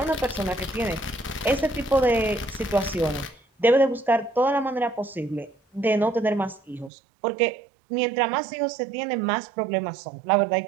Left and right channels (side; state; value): left; drops out; at 6.9 s